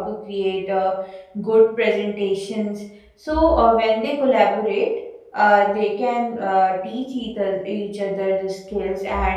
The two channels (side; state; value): both; identical; correlation 1.00